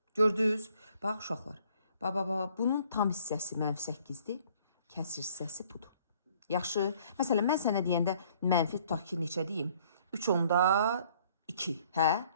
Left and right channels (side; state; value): both; inverted; correlation -0.60